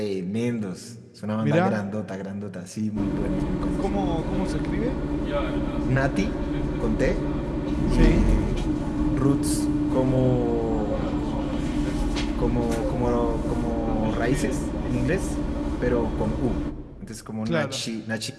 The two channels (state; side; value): identical; both; correlation 1.00